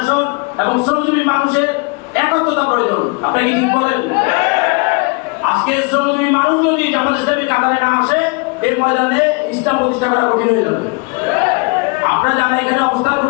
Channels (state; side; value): quieter; right; 30.7 dB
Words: এবং শ্রমজীবী মানুষের একত্রতা প্রয়োজন। আপনি কি ঠিক বলেন? আজকে শ্রমজীবী মানুষ যদি জামাত ইসলামী কাতারে না আসে, এই ময়দানে ইসলাম প্রতিষ্ঠা করা কঠিন হয়ে যাবে। আপনারা যারা এখানে অবস্থান